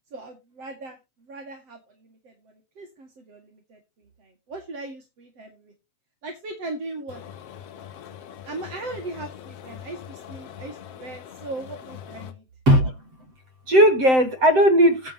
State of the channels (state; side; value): late; left; 7.7 ms